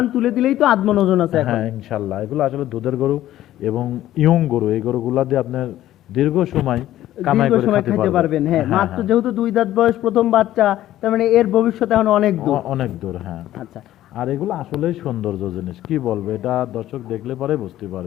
তুলে দিলেই তো আধমন ওজন আছে এখন। হ্যাঁ ইনশাল্লাহ, এগুলো আসলে দুধের গরু এবং ইয়ং গরু। এই গরুগুলা দিয়ে আপনার দীর্ঘ সময় কামাই দীর্ঘ করে সময় খেতে খেতে পারবেন। হ্যাঁ, হ্যাঁ, মাত্র হ্যাঁ। যেহেতু 2 দাঁত বয়স, প্রথম বাচ্চা, তার মানে এর ভবিষ্যৎ এখন অনেক দূর। অনেক দূর, হ্যাঁ। আচ্ছা, আর এগুলো আসলেই সৌন্দর্য জিনিস, কি বলবো, এটা দর্শক দেখলে পরে বুঝতে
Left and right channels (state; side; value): quieter; right; 13.6 dB